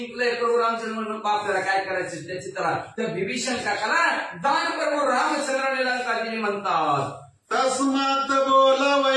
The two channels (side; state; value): both; identical; correlation 1.00